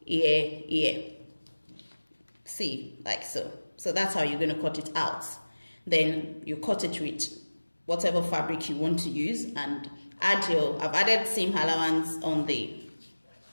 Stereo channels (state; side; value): inverted; both; correlation -1.00